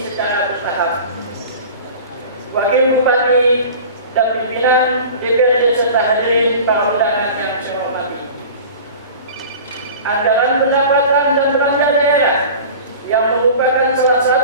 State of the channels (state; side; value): inverted; both; correlation -0.38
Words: secara bertahap. Wakil Bupati dan pimpinan DPRD serta hadirin para undangan yang saya hormati. Anggaran pendapatan dan belanja daerah yang merupakan salah